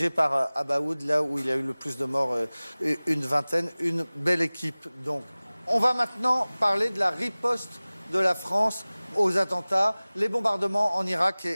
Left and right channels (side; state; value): both; inverted; correlation -0.99